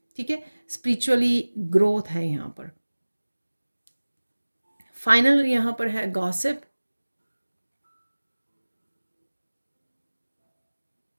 ठीक है, स्पिरिचुअली ग्रोथ है यहाँ पर। फाइनल यहाँ पर है गॉसिप,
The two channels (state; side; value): inverted; both; correlation -1.00